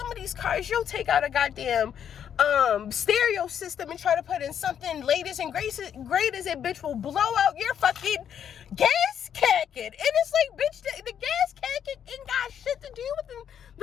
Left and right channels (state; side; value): quieter; right; 8.8 dB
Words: of these cars, you'll take out a goddamn stereo system and try to put in something latest and greatest, and bitch will blow out your fucking gas cacket. And it's like, bitch, the gas cacket ain't got shit to do with